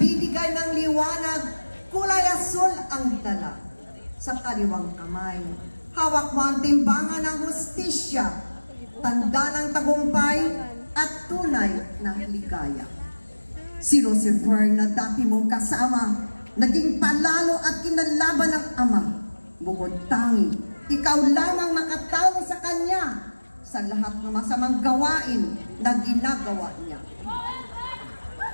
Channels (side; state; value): both; inverted; correlation -1.00